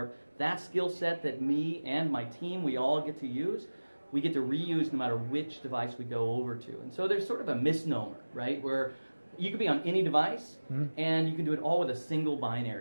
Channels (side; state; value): both; inverted; correlation -1.00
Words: That skill set that me and my team, we all get to use, we get to reuse no matter which device we go over to. And so there's sort of a misnomer, right, where you could be on any device and you can do it all with a single